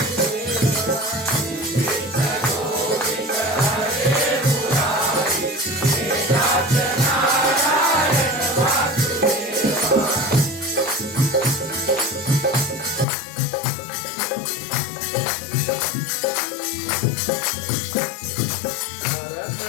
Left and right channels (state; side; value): drops out; right; at 13.1 s